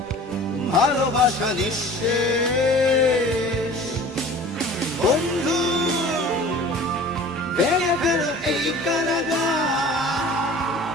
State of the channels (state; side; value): normal; both; correlation 0.44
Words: ভালোবাসা নিঃশেষ। বন্ধু ভেঙে ফেলো এই কারাগার,